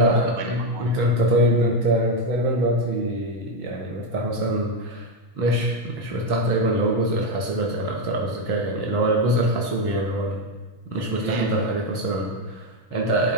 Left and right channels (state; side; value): late; right; 6.1 ms